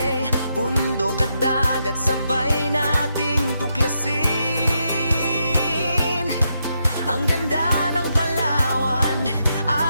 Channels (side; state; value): both; inverted; correlation -0.81